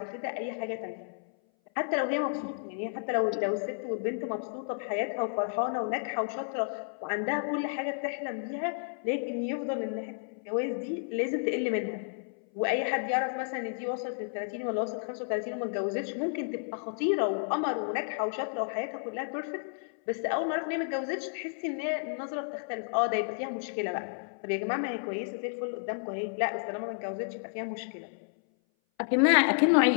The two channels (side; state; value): right; silent; 57 dB below the other